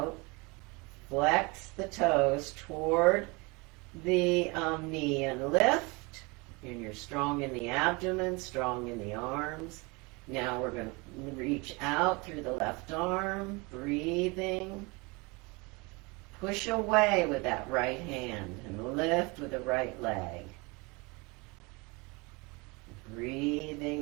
flex the toes toward the knee and lift, and you're strong in the abdomen, strong in the arms. Now we're going to reach out through the left arm, breathing. Push away with that right hand and lift with the right leg.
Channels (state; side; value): quieter; left; 27.1 dB